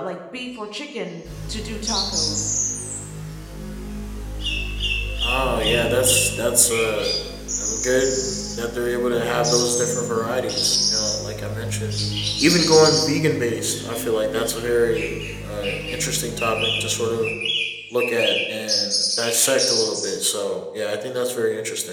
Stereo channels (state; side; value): identical; both; correlation 1.00